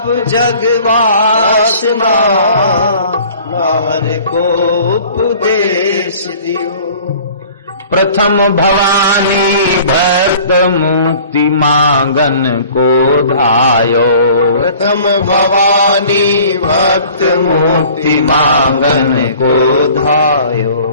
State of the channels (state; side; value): inverted; both; correlation -0.49